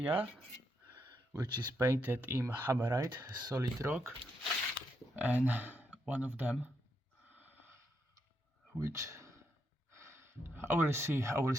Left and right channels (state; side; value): normal; both; correlation 0.80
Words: which is painted in hammerite, solid rock, and one of them, which I will